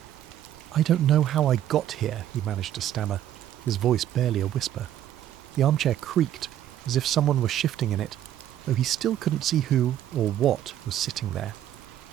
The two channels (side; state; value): left; quieter; 11.5 dB